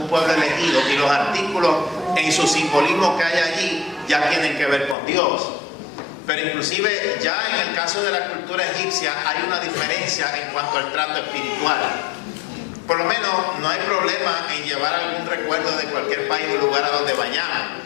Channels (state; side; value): drops out; right; at 5.0 s